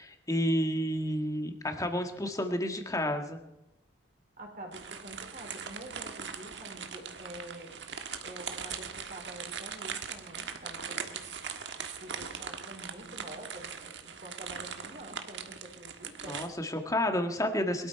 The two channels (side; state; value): both; normal; correlation 0.52